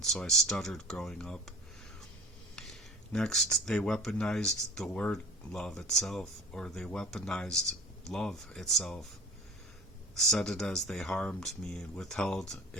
so I stuttered growing up. Next, they weaponized the word love itself, or they weaponized love itself, said it as they harmed me and withheld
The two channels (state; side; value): normal; both; correlation 0.41